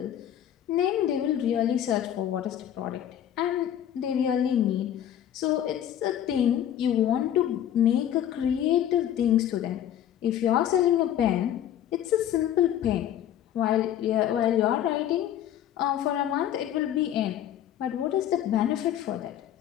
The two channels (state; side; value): quieter; right; 10.8 dB